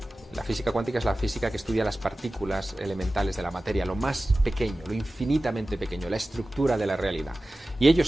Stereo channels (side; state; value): both; normal; correlation 0.96